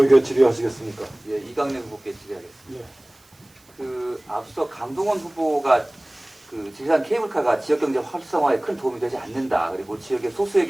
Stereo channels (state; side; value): noise; right; hiss, 30 dB below the sound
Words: 질의하시겠습니까? 예, 이강래 후보께 질의하겠습니다. 예. 그 앞서 강동원 후보가 그 지리산 케이블카가 지역경제 활성화에 큰 도움이 되지 않는다. 그리고 지역의